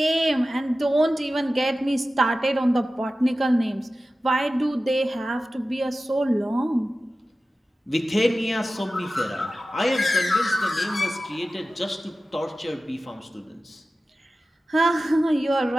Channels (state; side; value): normal; both; correlation 0.95